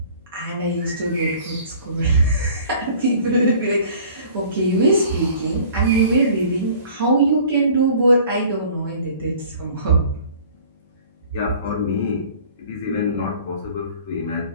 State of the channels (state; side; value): inverted; both; correlation -0.49